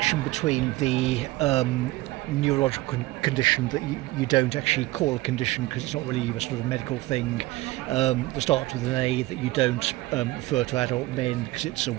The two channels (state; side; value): quieter; left; 19.1 dB